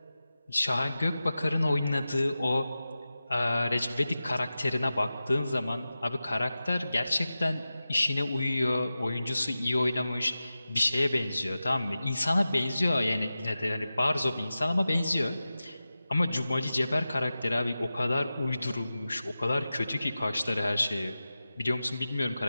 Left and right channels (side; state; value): both; inverted; correlation -0.94